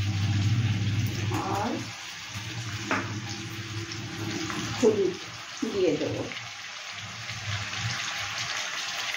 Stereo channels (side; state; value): both; identical; correlation 1.00